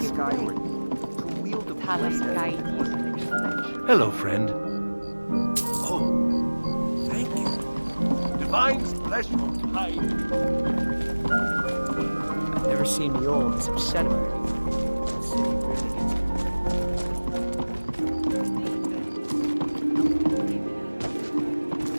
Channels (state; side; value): inverted; both; correlation -1.00